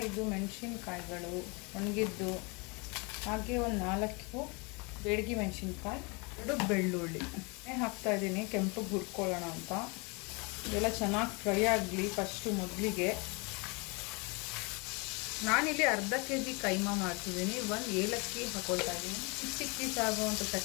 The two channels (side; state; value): right; quieter; 30.1 dB